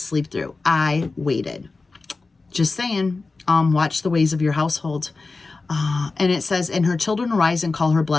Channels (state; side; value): quieter; right; 3.8 dB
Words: sleep through. I waited. Just saying, watch the ways of your household. And it says, and her children arise and call her